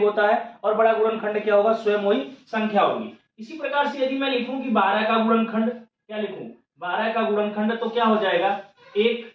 होता है और बड़ा गुणनखंड क्या होगा, स्वयं वही संख्या होगी। इसी प्रकार से यदि मैं लिखूं कि 12 का गुणनखंड, क्या लिखूं, 12 का गुणनखंड, तो क्या हो जाएगा,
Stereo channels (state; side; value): identical; both; correlation 1.00